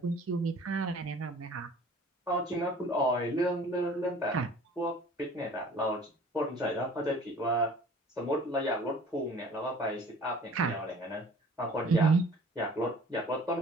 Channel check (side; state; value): both; normal; correlation 0.49